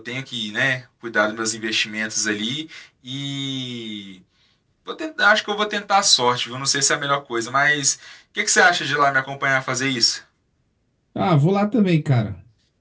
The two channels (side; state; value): both; identical; correlation 1.00